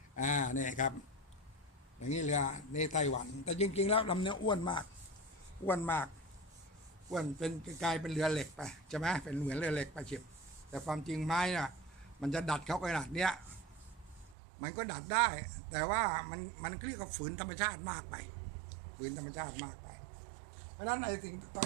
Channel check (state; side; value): drops out; left; at 14.4 s